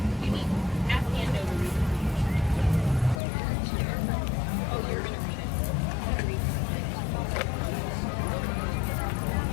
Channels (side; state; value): right; drops out; at 3.2 s